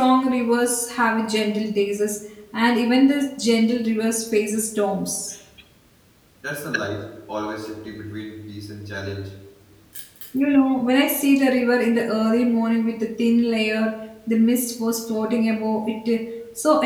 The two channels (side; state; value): both; identical; correlation 1.00